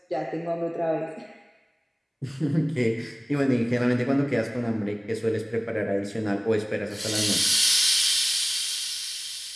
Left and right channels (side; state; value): both; identical; correlation 1.00